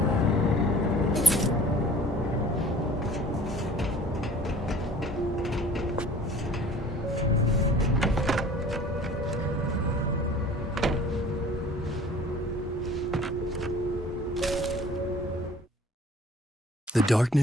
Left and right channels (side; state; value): both; normal; correlation 0.49